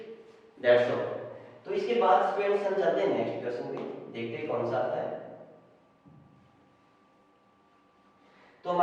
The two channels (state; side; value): identical; both; correlation 1.00